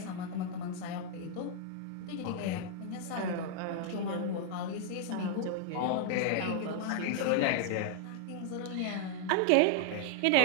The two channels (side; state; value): both; different; correlation 0.00